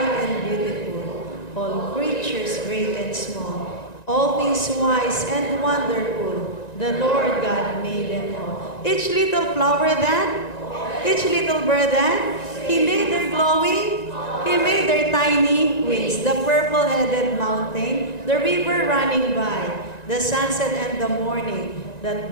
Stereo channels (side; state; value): right; late; 1.9 ms